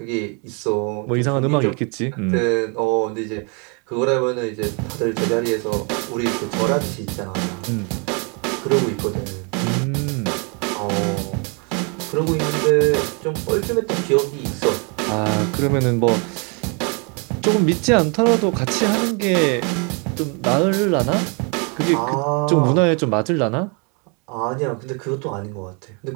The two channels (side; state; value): left; quieter; 34.5 dB